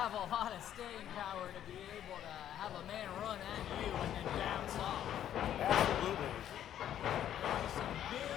a lot of staying power to be able to have a man run at you and then bounce off. Absolutely. Some big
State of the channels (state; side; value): quieter; right; 10.8 dB